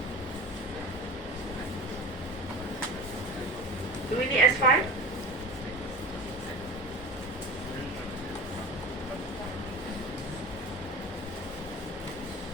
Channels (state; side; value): normal; both; correlation 0.32